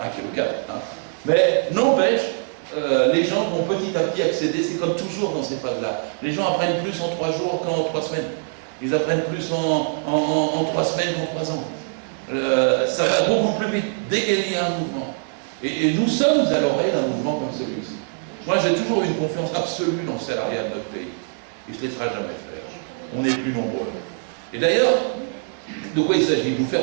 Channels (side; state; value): left; silent; 59 dB below the other